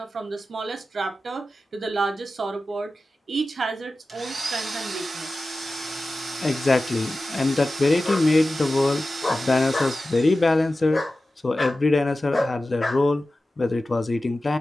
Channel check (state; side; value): normal; both; correlation 0.95